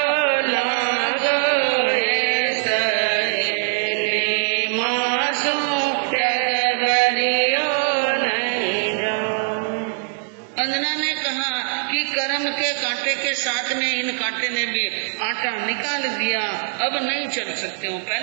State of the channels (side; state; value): left; silent; digital silence